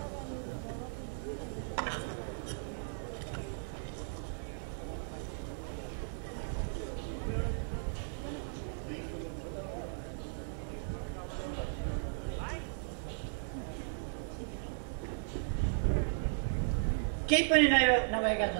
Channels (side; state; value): left; silent; digital silence